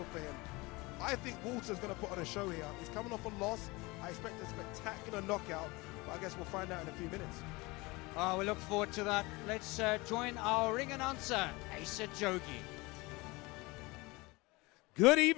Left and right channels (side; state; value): right; quieter; 23.7 dB